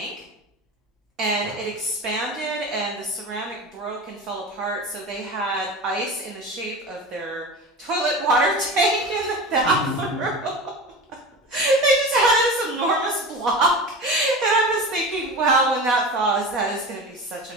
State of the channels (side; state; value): both; normal; correlation 0.30